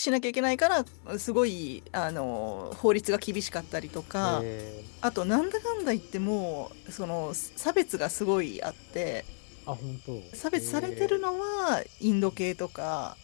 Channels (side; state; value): right; silent; 57 dB below the other